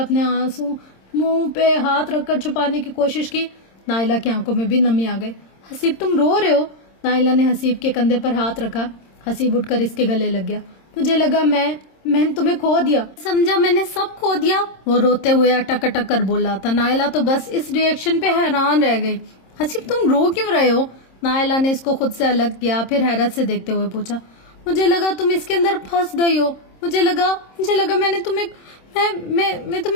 آنسو منہ پہ ہاتھ رکھ کر چھپانے کی کوشش کی۔ نائلہ کی آنکھوں میں بھی نمی آ گئی۔ حسیب تم رو رہے ہو؟ نائلہ نے حسیب کے کندھے پر ہاتھ رکھا۔ حسیب اٹھ کر اس کے گلے لگ گیا۔ مجھے لگا میں نے تمہیں کھو دیا، سمجھا میں نے سب کھو دیا، وہ روتے ہوئے اٹک اٹک کر بولا تھا۔ نائلہ تو بس اس ری ایکشن پہ حیران رہ گئی۔ حسیب تم رو کیوں رہے ہو؟ نائلہ نے اس کو خود سے الگ کیا، پھر حیرت سے دیکھتے ہوئے پوچھا۔ مجھے لگا تم اس کے اندر پھنس گئی ہو، مجھے لگا میں نے تمہیں میں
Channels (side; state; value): right; late; 26 ms